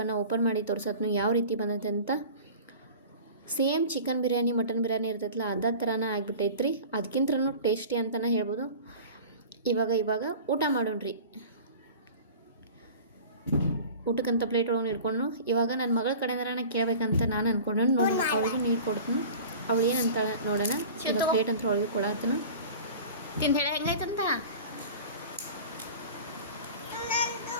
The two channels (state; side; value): inverted; both; correlation -0.39